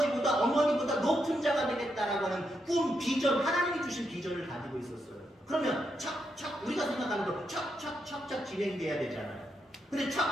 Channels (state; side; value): normal; both; correlation 0.82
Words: 어머니보다 높은 자가 되겠다라고 하는 꿈, 비전, 하나님이 주신 비전을 가지고 있었어요. 그러면 우리가 생각할 진행돼야 되잖아요. 근데